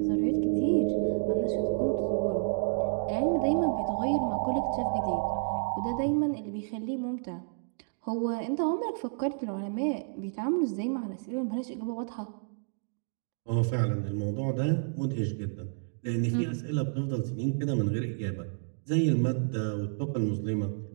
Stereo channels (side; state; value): left; silent; digital silence